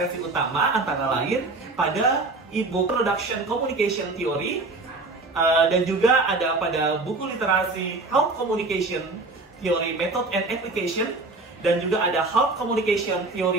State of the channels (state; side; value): quieter; left; 3.3 dB